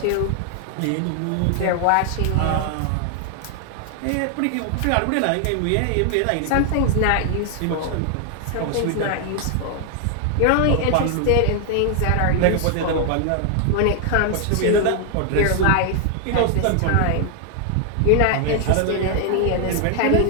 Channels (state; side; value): different; both; correlation 0.00